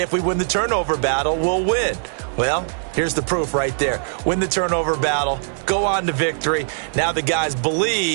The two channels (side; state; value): left; silent; digital silence